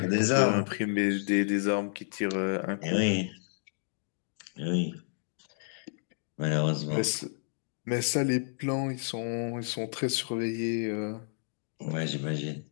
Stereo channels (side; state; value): right; silent; digital silence